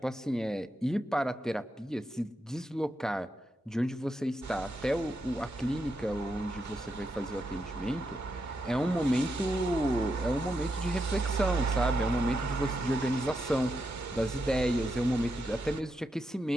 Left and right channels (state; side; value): normal; both; correlation 0.84